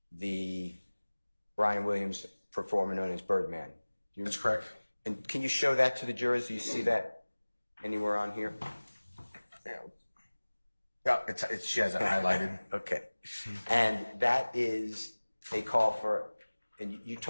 the Brian Williams performer known as Birdman. That's correct. And can you show that to the jurors? Do you see that anywhere on here? Yeah, she has it highlighted. Okay. And that is a call for, and you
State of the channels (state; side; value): inverted; both; correlation -1.00